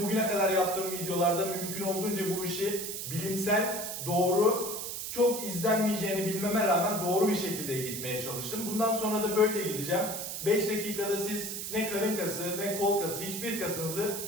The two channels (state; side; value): noise; right; hiss, 5 dB below the sound